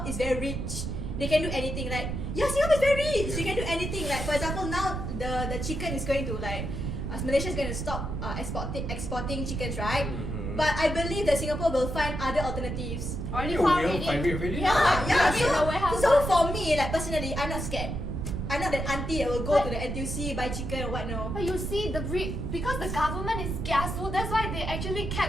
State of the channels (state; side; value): noise; right; rumble, 4 dB below the sound